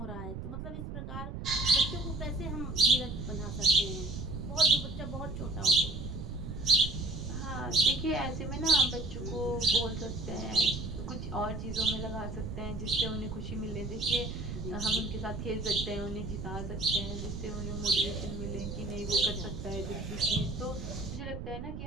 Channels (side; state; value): right; noise; rumble, 7 dB below the sound